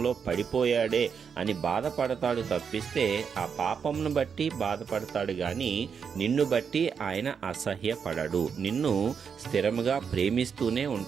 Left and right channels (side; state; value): left; quieter; 6.6 dB